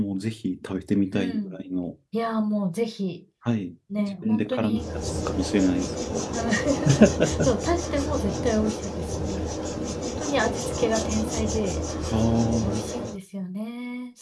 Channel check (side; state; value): both; identical; correlation 1.00